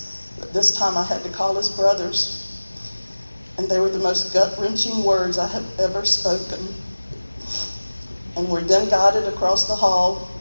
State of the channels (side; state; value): both; inverted; correlation -1.00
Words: But this time I had to call his brothers. And they were the most gut-wrenching words I have ever spoken. And we're then guided across the hall